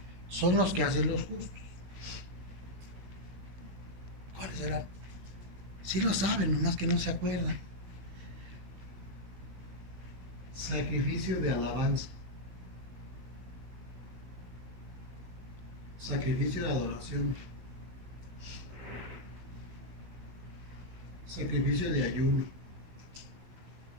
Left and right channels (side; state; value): left; late; 16 ms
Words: son los que hacen los justos. ¿Cuáles serán? Sí lo saben, nomás que no se acuerdan. Sacrificio de alabanza. Sacrificio de adoración. Sacrificio de ayuno.